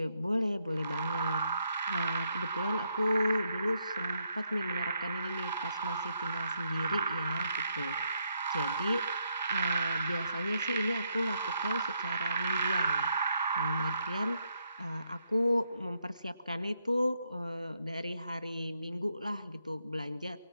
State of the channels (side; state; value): both; inverted; correlation -0.77